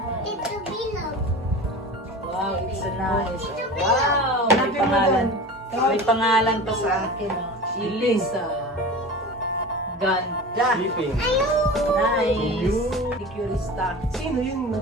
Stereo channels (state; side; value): normal; both; correlation 0.33